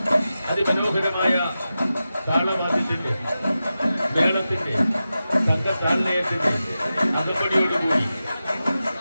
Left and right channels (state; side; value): inverted; both; correlation -0.93